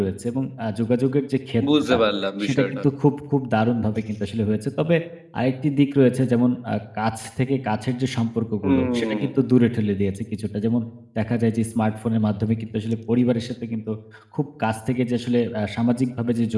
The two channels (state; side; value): identical; both; correlation 1.00